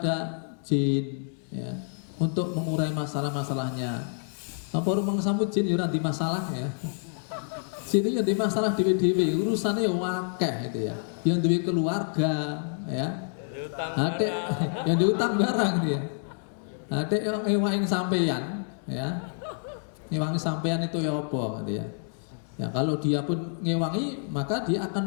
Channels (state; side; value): silent; right; digital silence